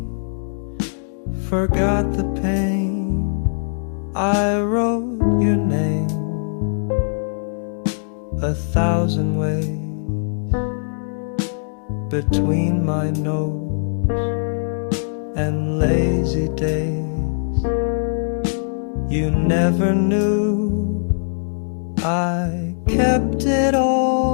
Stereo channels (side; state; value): right; silent; digital silence